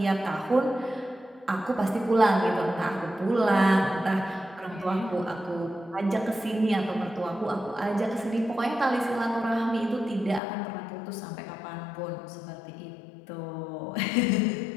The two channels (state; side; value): drops out; right; at 10.4 s